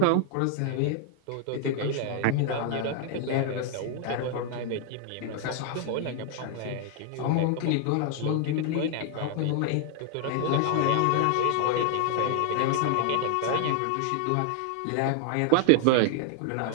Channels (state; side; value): different; both; correlation 0.00